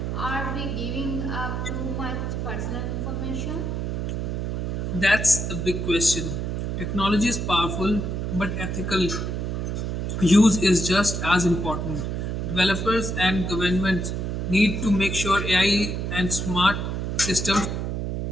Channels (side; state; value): right; noise; hum, 2 dB below the sound